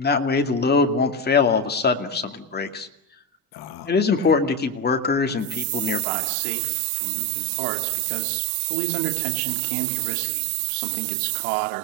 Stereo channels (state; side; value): drops out; left; at 6.1 s